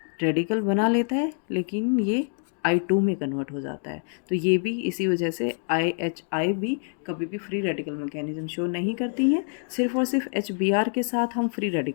रेडिकल बना लेता है लेकिन ये I2 में कन्वर्ट हो जाता है। तो ये भी इसी वजह से IHI भी कभी भी फ्री रेडिकल मैकेनिज्म शो नहीं करती हैं, सिर्फ और सिर्फ HBr के साथ हम फ्री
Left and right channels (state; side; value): silent; right; 56 dB below the other